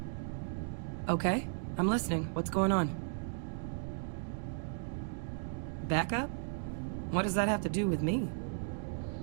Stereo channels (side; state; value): left; silent; digital silence